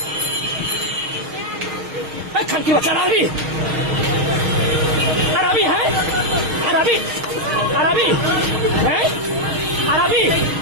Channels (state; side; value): late; left; 6.4 ms